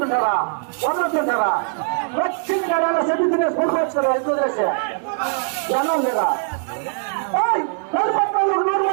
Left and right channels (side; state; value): left; silent; 65 dB below the other